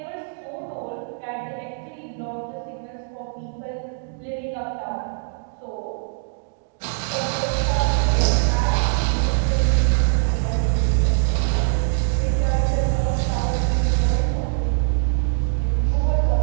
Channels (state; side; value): silent; left; digital silence